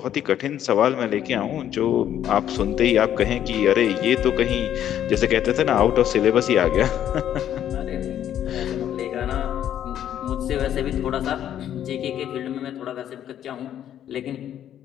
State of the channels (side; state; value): right; quieter; 10.6 dB